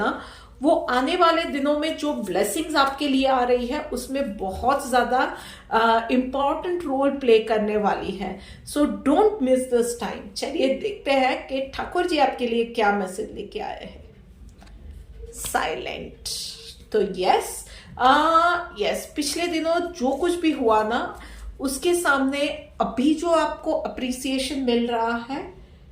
वो आने वाले दिनों में जो ब्लेसिंग्स आपके लिए आ रही है उसमें बहुत ज्यादा इंपॉर्टेंट रोल प्ले करने वाली है। So don't miss this time. चलिए देखते हैं कि ठाकुर जी आपके लिए क्या मैसेज लेके आए हैं। साइलेंट। तो यस, पिछले दिनों जो कुछ भी हुआ ना, उसके सामने अभी जो आपको अप्रिसिएशन मिल रहा है,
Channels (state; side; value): identical; both; correlation 1.00